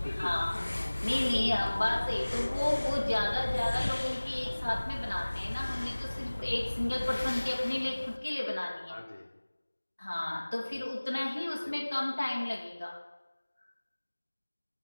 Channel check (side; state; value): both; inverted; correlation -1.00